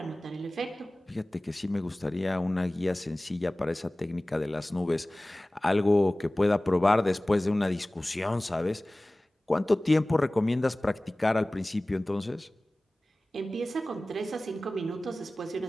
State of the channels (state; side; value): normal; both; correlation 0.98